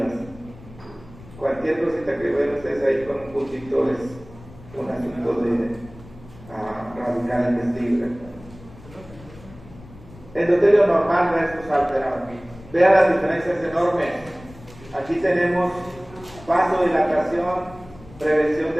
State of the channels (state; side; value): noise; left; rumble, 20 dB below the sound